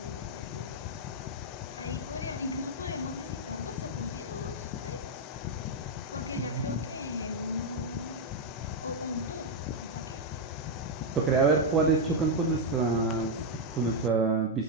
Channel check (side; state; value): both; normal; correlation 0.01